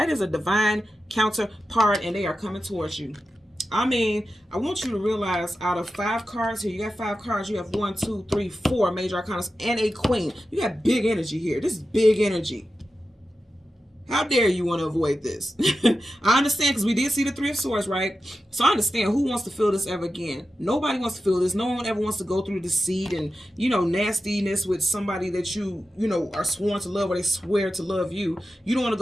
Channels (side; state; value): both; normal; correlation 0.92